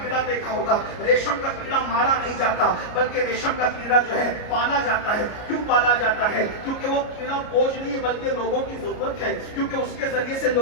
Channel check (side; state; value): right; late; 33 ms